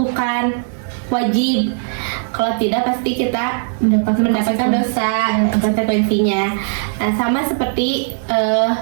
wajib. Kalau tidak pasti kita mendapatkan dosa, konsekuensinya. Nah, sama seperti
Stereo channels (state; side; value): silent; left; digital silence